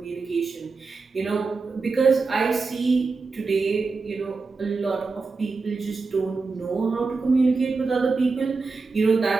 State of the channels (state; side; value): quieter; left; 4.2 dB